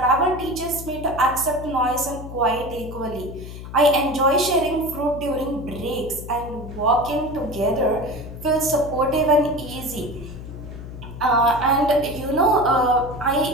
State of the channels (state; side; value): noise; left; hum, 11 dB below the sound